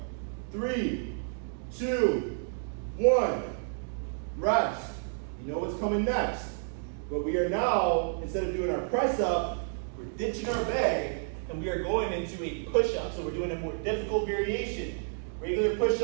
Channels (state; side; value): silent; left; digital silence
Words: 3, 2, 1. Rest. You know what's coming next. But we are now, instead of doing our press up, we're ditching our bag and we are going into a push up. So we're doing a more difficult variation. Regular push